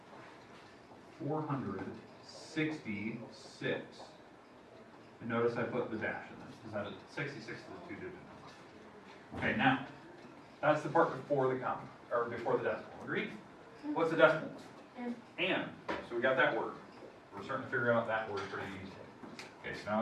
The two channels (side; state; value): both; identical; correlation 1.00